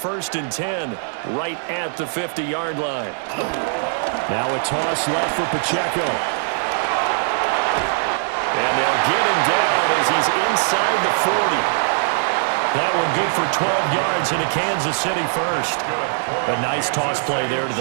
and 10 right at the 50-yard line. Now a toss left for Pacheco. And they'll get him down as he's inside the 40. That one good for 12 yards into Kansas City first. A nice toss play there to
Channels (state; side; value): silent; left; digital silence